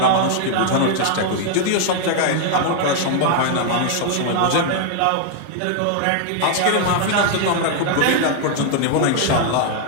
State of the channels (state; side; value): different; both; correlation 0.00